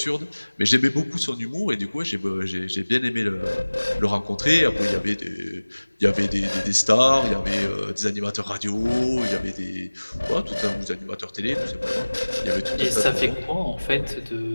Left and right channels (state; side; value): inverted; both; correlation -1.00